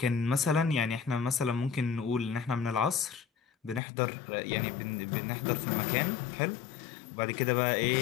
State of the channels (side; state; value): right; drops out; at 3.8 s